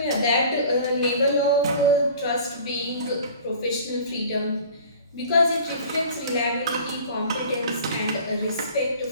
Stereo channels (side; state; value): both; inverted; correlation -0.44